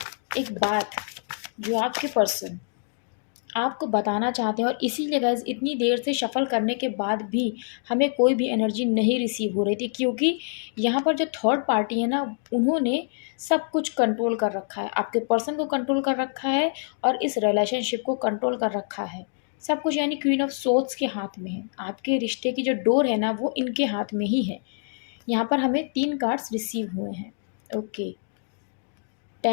एक बात जो आपके पर्सन आपको बताना चाहते हैं। और इसीलिए गाइस, इतनी देर से शफल करने के बाद भी हमें कोई भी एनर्जी नहीं रिसीव हो रही थी, क्योंकि यहाँ पर जो थर्ड पार्टी है ना, उन्होंने सब कुछ कंट्रोल कर रखा है। आपके पर्सन को कंट्रोल कर रखा है और इस रिलेशनशिप को कंट्रोल कर रखा है, सब कुछ। यानी क्वीन ऑफ सोर्ड्स के हाथ में है। आपके रिश्ते की जो डोर है ना, वो इनके हाथ में ही है। यहाँ पर हमें 3 कार्ड्स रिसीव हुए हैं। Okay,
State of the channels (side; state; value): right; silent; digital silence